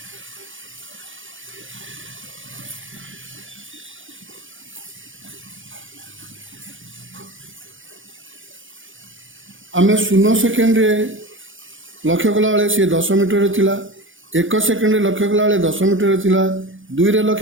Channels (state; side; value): late; left; 0.57 ms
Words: आम 0 सेकेंड लक्ष्य कला बेले सी 10 मीटर थिला। 1 सेकेंड लक्ष्य कला बेले 10 मीटर थिला। 2 रे